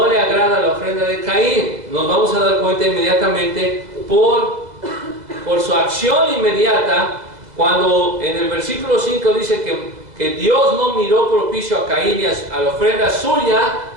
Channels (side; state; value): left; late; 2.0 ms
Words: le agrada la ofrenda de Caín? Nos vamos a dar cuenta inmediatamente por su acción inmediata, cuando en el versículo 5 dice que Dios no miró propicio a Caín y a la ofrenda suya.